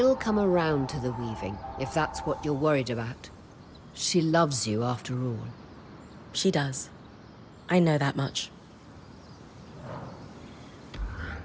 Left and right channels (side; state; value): both; identical; correlation 1.00